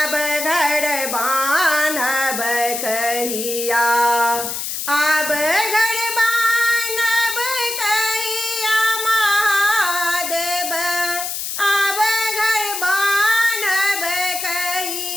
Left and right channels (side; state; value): left; noise; hiss, 4 dB below the sound